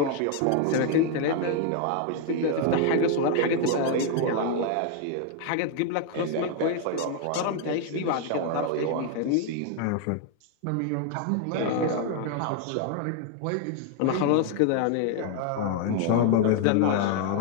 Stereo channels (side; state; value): both; different; correlation 0.00